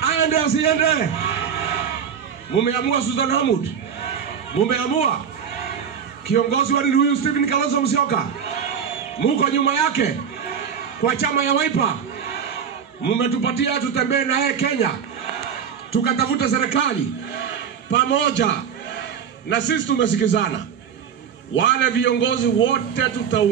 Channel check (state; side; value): quieter; left; 7.6 dB